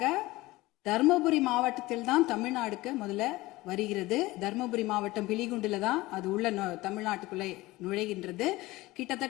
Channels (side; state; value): right; quieter; 19.4 dB